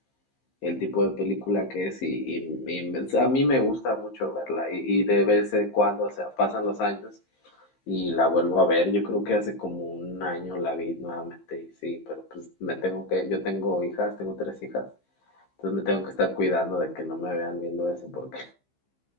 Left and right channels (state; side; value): late; right; 15 ms